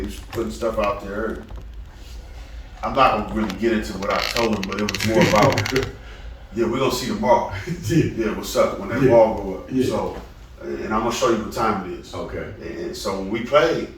was putting stuff out there. I'm not gonna really get into what I told him, but it was more about, we're gonna see tomorrow. Yeah, what's up when that ball go up. Yeah. So, and I'm gonna show you what time it is. Okay. And so when we played,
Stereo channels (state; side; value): identical; both; correlation 1.00